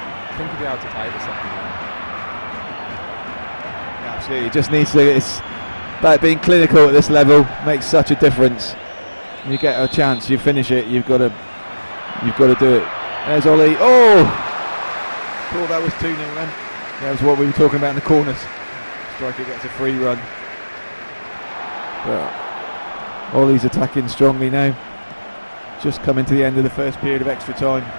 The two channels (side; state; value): both; inverted; correlation -1.00